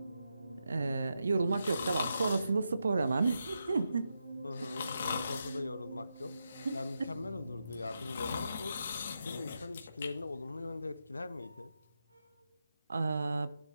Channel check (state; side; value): inverted; both; correlation -0.86